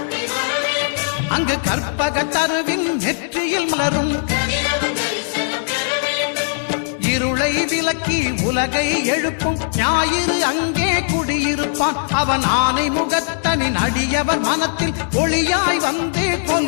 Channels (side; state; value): right; silent; digital silence